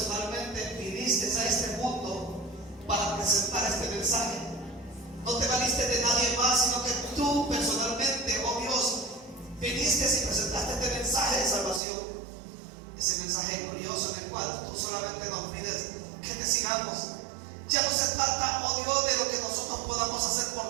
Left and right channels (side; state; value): left; drops out; at 11.8 s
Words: viniste a este mundo para presentar este mensaje. No te valiste de nadie más, sino que tú personalmente, oh Dios, viniste y presentaste este mensaje de salvación. Ese mensaje glorioso en el cual tú solamente nos pides que te sigamos. Ya no se trata, oh Dios, de lo que nosotros podamos hacer